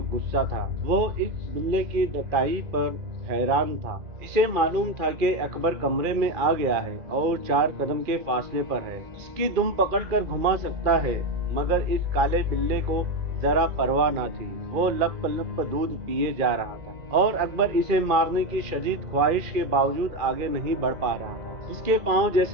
गुस्सा था। वो इस बिल्ले की डटाई पर हैरान था। इसे मालूम था कि अकबर कमरे में आ गया है और 4 कदम के फासले पर है। इसकी दुम पकड़कर घुमा सकता है, मगर इस काले बिल्ले को जरा परवाह ना थी। वो लप लप दूध पिए जा रहा था, और अकबर इसे मारने की शदीद ख्वाहिश के बावजूद आगे नहीं बढ़ पा रहा था। इसके पांव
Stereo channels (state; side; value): late; left; 2.4 ms